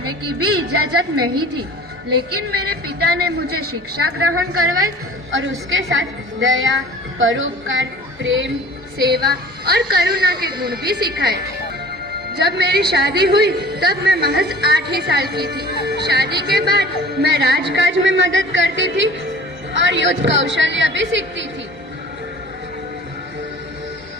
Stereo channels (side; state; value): both; normal; correlation 0.44